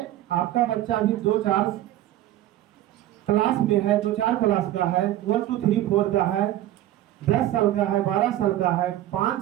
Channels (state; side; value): quieter; left; 13.9 dB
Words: आपका बच्चा अभी 2-4 क्लास में है, 2-4 क्लास का है, 1 2 3 4 का है, 10 साल का है, 12 साल का है,